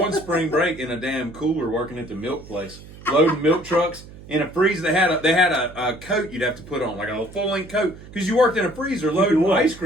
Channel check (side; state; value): right; noise; hum, 18 dB below the sound